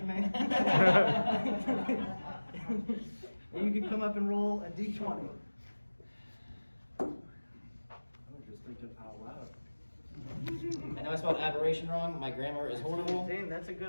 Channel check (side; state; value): both; inverted; correlation -1.00